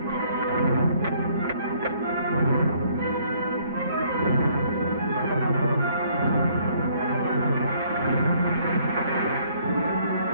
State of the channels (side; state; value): both; inverted; correlation -0.64